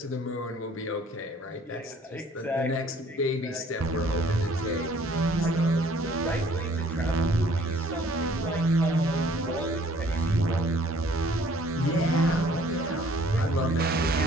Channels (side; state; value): both; normal; correlation 0.58